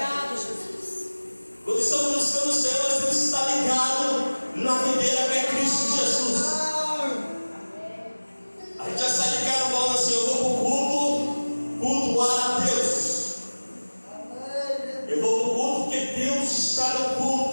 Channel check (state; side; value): inverted; both; correlation -1.00